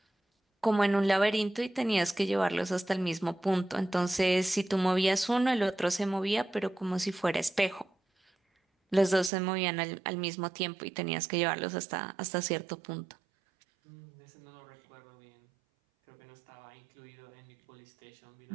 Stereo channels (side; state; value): left; drops out; at 9.3 s